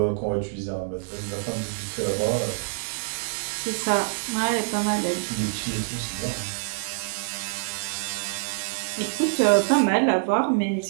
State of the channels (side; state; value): left; silent; digital silence